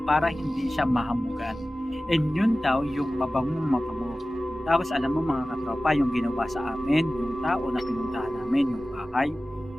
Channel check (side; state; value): both; normal; correlation 0.96